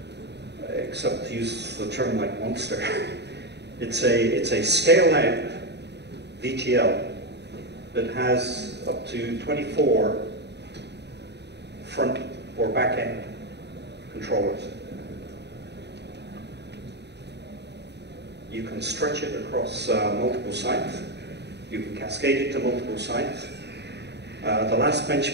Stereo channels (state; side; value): late; left; 0.50 ms